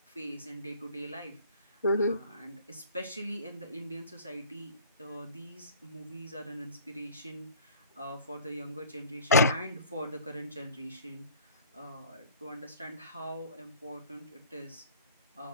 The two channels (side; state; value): both; inverted; correlation -0.50